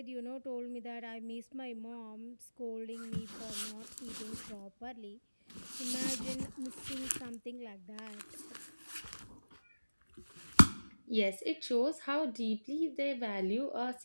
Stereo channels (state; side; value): inverted; both; correlation -1.00